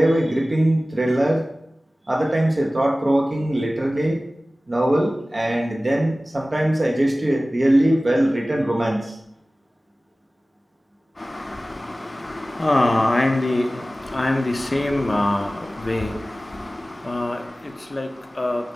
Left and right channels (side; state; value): both; normal; correlation 0.97